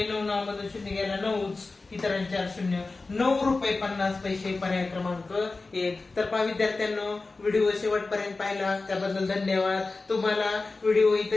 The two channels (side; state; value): right; quieter; 3.6 dB